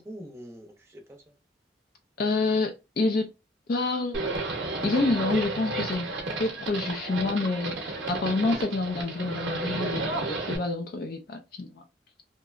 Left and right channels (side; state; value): both; normal; correlation 0.53